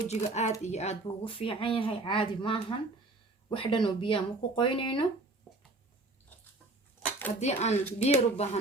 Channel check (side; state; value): left; quieter; 3.0 dB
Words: aad iyo aad buu ugu fiican yahay caadi maahan wax dhan oo biyo ma ku qoynayno hadii aan biyo u